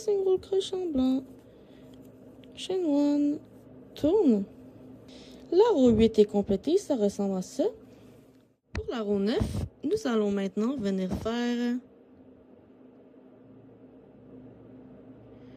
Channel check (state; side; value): identical; both; correlation 1.00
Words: crochet en blanc. Chain 1. Tourne. La roue 8 est complétée, ça ressemble à ça. Pour la roue 9, nous allons maintenant venir faire